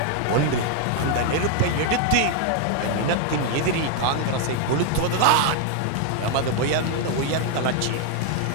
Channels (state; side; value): different; both; correlation 0.00